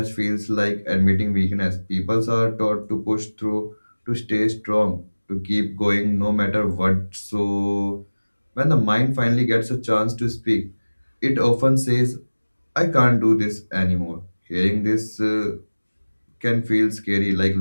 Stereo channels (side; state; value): both; inverted; correlation -1.00